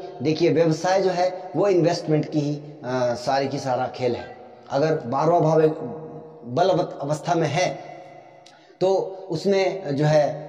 देखिए व्यवसाय जो है वो इन्वेस्टमेंट की ही सारी की सारा खेल है। अगर 12वां भाव एक बलवत अवस्था में है तो उसमें जो है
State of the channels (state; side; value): identical; both; correlation 1.00